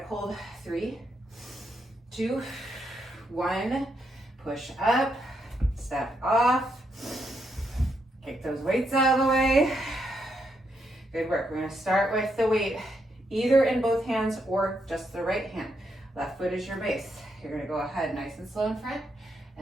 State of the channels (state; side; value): normal; both; correlation 0.79